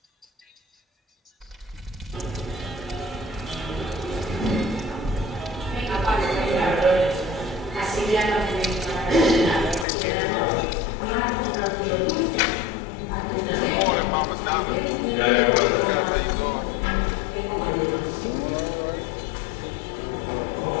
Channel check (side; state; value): right; drops out; at 9.9 s